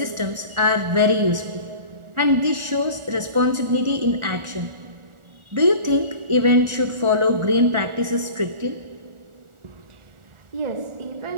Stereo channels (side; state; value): left; late; 1.4 ms